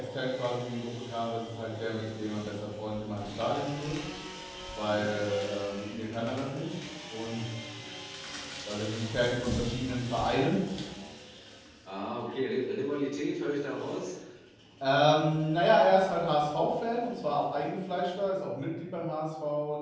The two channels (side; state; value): both; identical; correlation 1.00